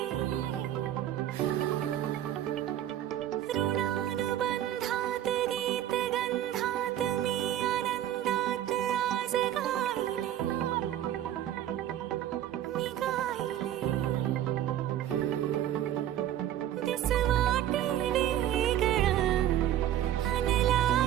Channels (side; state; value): left; quieter; 11.9 dB